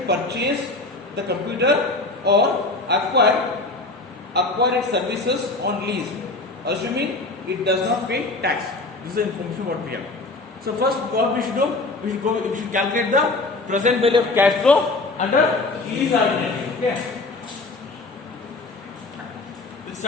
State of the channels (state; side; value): quieter; right; 3.2 dB